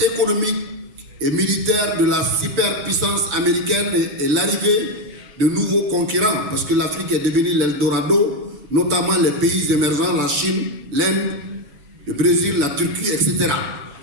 économique et militaire de la superpuissance américaine et l'arrivée de nouveaux concurrents, parce que l'Afrique est devenue l'Eldorado, notamment les pays émergents, la Chine, l'Inde, le Brésil, la Turquie, etc.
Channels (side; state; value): left; late; 7.0 ms